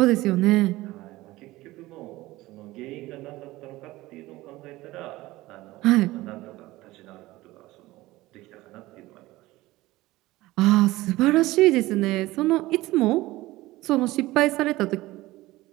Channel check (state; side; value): quieter; left; 18.4 dB